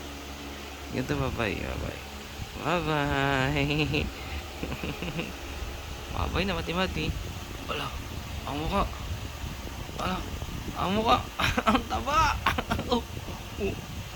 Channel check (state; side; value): identical; both; correlation 1.00